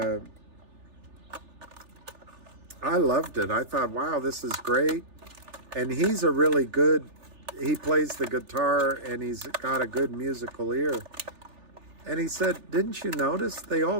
I loved it. I thought, wow, this is great. And he's a really good, he plays the guitar and he's got a good musical ear. And he said, didn't you notice they all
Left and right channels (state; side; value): late; left; 3.4 ms